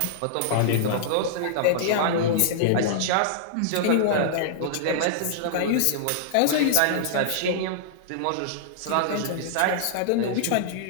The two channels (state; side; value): different; both; correlation -0.01